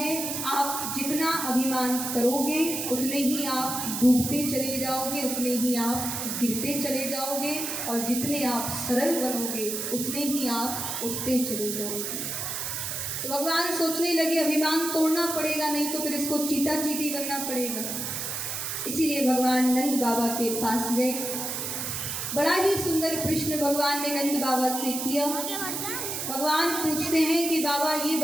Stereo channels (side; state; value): right; noise; hiss, 3 dB below the sound